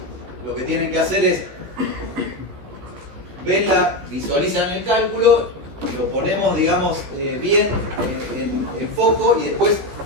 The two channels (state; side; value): late; left; 16 ms